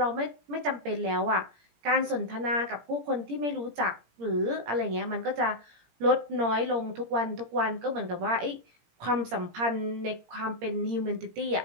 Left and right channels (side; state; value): left; late; 17 ms